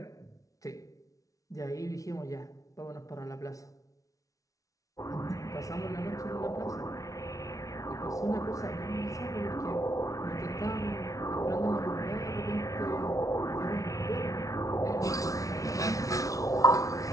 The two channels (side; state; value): right; late; 0.17 ms